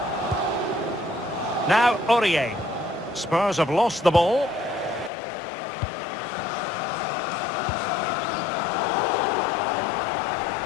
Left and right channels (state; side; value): drops out; right; at 5.1 s